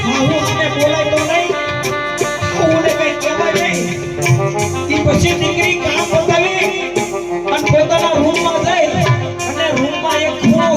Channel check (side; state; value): both; identical; correlation 1.00